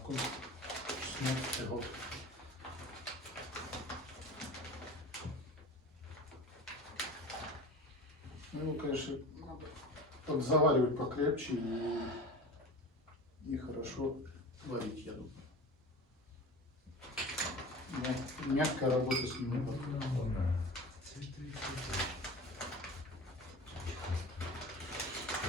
16 год. Ну, его, конечно, надо подзаваривать покрепче и хорошо варить, я думаю. Но мягкая работа с ним не подходит.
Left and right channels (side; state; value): both; normal; correlation 0.34